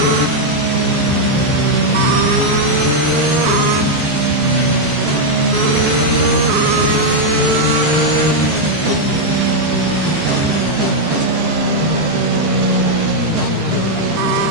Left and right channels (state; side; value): late; left; 13 ms